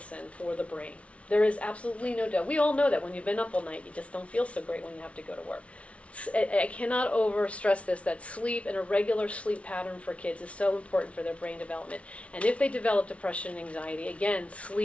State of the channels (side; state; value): right; late; 0.063 ms